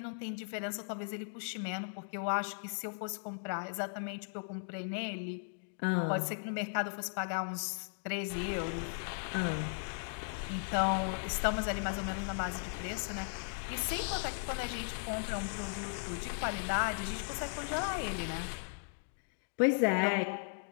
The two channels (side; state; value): right; silent; digital silence